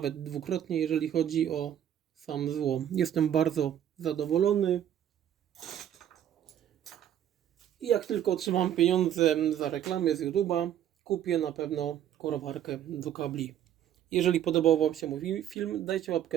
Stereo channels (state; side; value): quieter; left; 10.5 dB